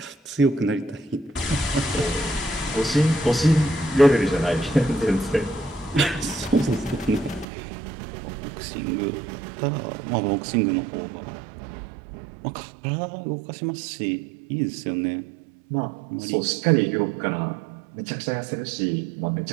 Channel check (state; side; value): drops out; left; at 7.5 s